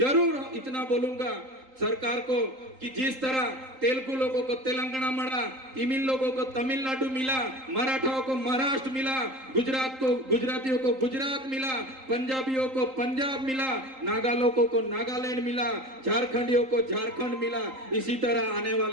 इतना बोलूंगा सरकार को कि जिस तरह तेलुगु लोगों को तेलंगाना मिला, तमिल लोगों को तमिलनाडु मिला, मराठाओं को महाराष्ट्र मिला, गुजरातियों को गुजरात मिला, पंजाबियों को पंजाब मिला, नागा लोगों को नागालैंड मिला, झारखंडियों को झारखंड मिला, इसी तरह आने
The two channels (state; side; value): late; left; 3.8 ms